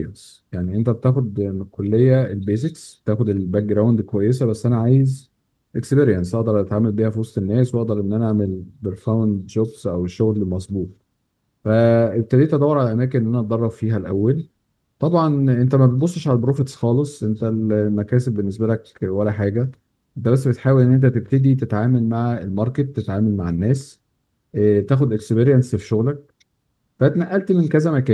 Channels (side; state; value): both; identical; correlation 1.00